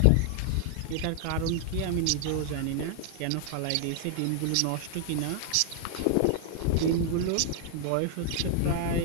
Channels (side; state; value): both; different; correlation 0.00